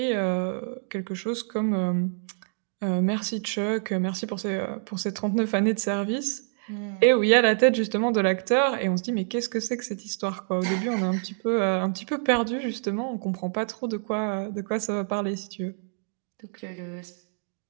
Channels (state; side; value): silent; left; digital silence